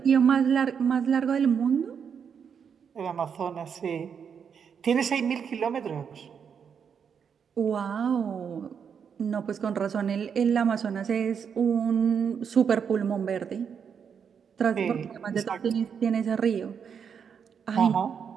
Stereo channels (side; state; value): left; quieter; 7.1 dB